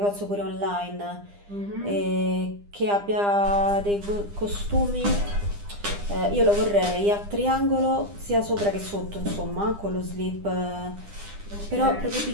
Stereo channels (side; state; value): left; late; 9.9 ms